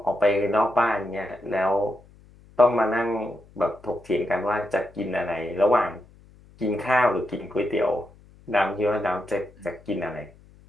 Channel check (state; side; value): noise; left; hum, 25 dB below the sound